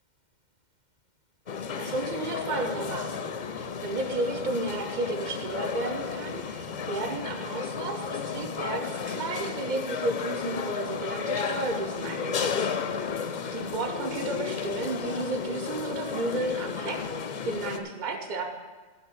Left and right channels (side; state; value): left; late; 2.1 ms